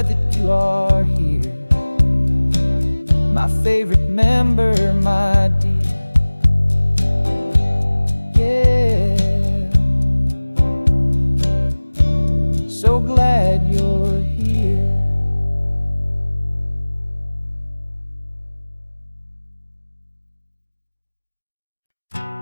that you are here, my favorite member, my dear. Yeah, so glad you're here.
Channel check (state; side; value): inverted; both; correlation -1.00